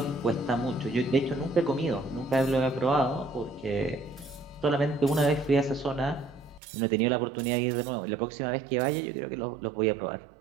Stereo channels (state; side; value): drops out; left; at 6.6 s